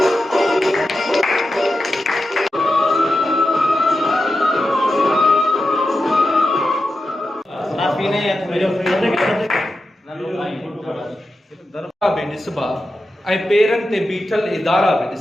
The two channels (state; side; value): normal; both; correlation 0.90